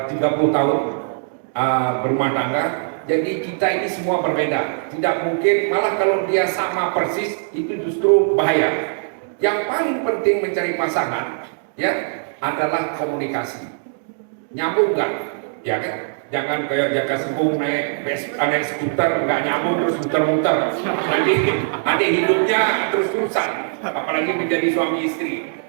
tahun berumah tangga. Jadi kita ini semua berbeda. Tidak mungkin, malah kalau dia sama persis itu justru bahaya. Yang paling penting mencari pasangan ya adalah komunikasi. Nyambung nggak? Ya kan? Jangan kayak Jaka Sembung naik skuter nggak nyambung terus muter-muter. Nanti hidupnya terus rusak. Apalagi menjadi suami istri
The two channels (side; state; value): left; silent; digital silence